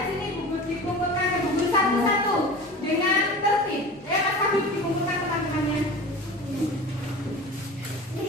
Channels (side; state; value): both; normal; correlation 0.36